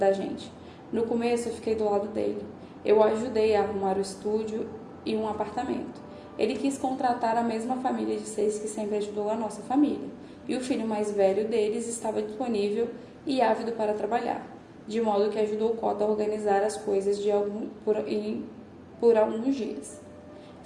gente. No começo eu fiquei do lado dele. Eu o ajudei a arrumar o estúdio e um apartamento. Ele quis contratar a mesma família de 6 que sempre ajudou a nossa família. E o filho mais velho deles estava disponível e ávido para trabalhar, de modo que ajudou Cota a organizar as coisas por alguns dias.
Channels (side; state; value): both; identical; correlation 1.00